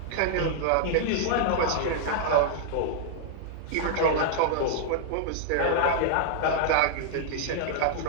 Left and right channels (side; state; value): both; different; correlation -0.01